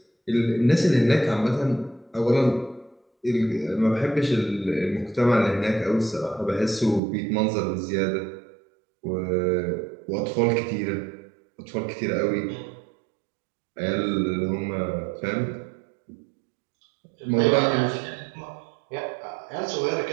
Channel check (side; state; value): left; drops out; at 7.0 s